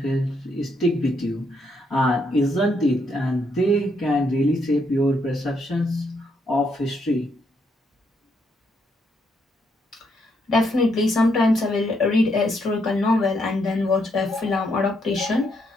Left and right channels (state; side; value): normal; both; correlation 0.76